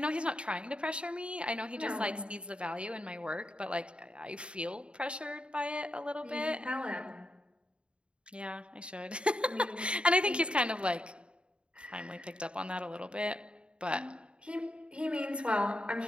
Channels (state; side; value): late; left; 0.055 ms